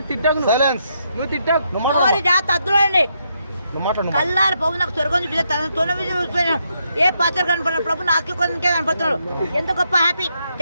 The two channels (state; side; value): inverted; both; correlation -0.78